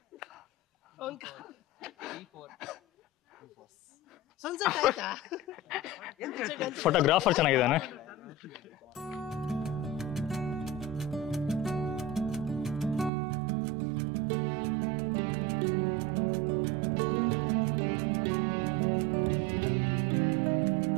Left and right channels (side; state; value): left; drops out; at 13.1 s